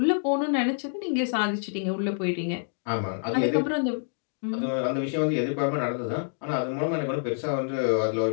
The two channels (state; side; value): silent; right; digital silence